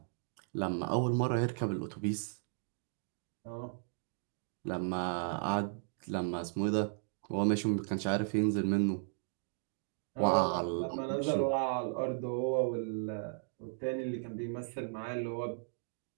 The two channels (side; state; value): left; silent; digital silence